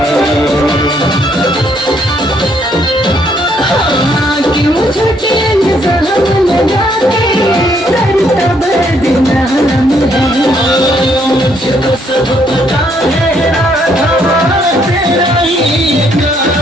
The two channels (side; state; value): both; normal; correlation 0.70